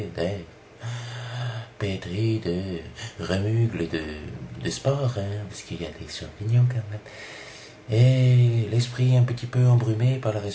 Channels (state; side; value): identical; both; correlation 1.00